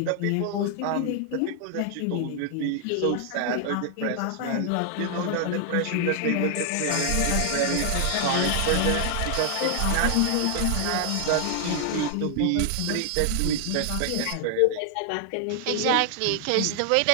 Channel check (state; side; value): different; both; correlation 0.00